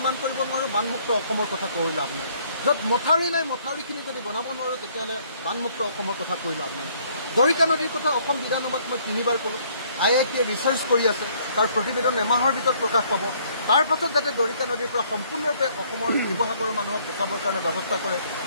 কৰিব নোৱাৰোঁ বানমুক্ত অসমৰ কথা কৈ লাভ নাই। য'ত মথাউৰি নাই মথাউৰিখিনি যদি বনাব নোৱাৰোঁ তেতিয়াহ'লে বানমুক্ত অসমৰ কথা কৈ লাভ নাই। দৰিকা নদীৰ কথা অসম বিধানসভাত মই 3বাৰ ক'লোঁ। IITয়ে ৰিচাৰ্চ কৰি আছে, তাৰ প্ৰতিবেদন এমাহৰ ভিতৰত প্ৰকাশ পাব। তাৰ পাছত যাতে দৰিকা নদীৰ পৰা সম্পূৰ্ণৰূপে অসমৰ শিৱসাগৰৰ মানুহক বচাবৰ কাৰণে ব্যৱস্থা কৰে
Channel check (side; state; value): both; inverted; correlation -0.63